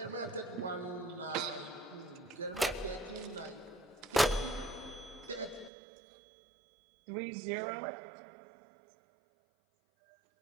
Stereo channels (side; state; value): left; drops out; at 5.7 s